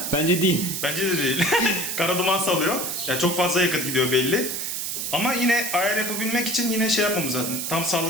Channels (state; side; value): noise; right; hiss, 3 dB below the sound